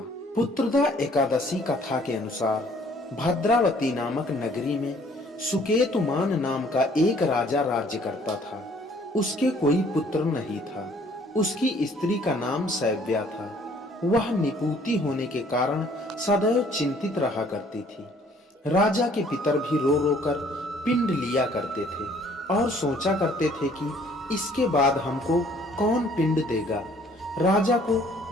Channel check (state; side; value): normal; both; correlation 0.59